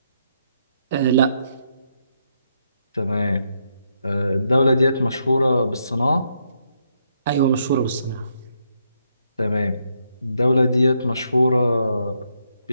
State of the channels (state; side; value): inverted; both; correlation -0.77